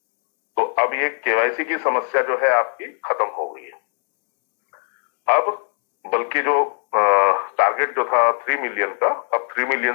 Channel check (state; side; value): silent; right; 65 dB below the other